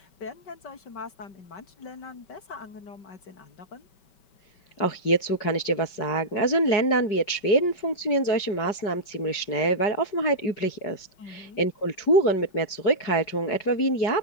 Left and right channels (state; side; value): late; right; 5.2 ms